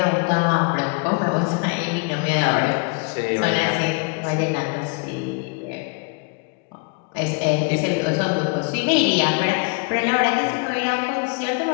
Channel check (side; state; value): right; quieter; 32.7 dB